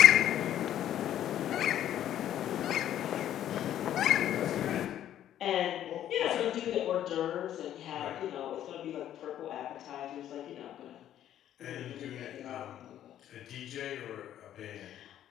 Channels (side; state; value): right; quieter; 11.4 dB